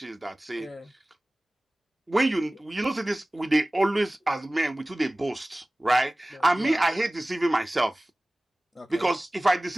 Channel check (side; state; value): both; normal; correlation 0.98